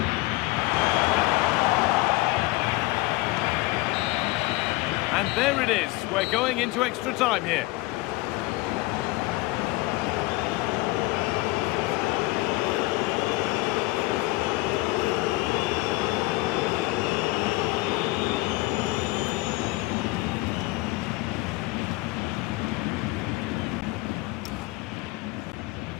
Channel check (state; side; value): quieter; right; 21.2 dB